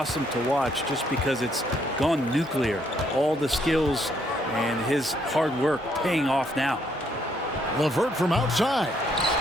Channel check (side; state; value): both; normal; correlation 0.71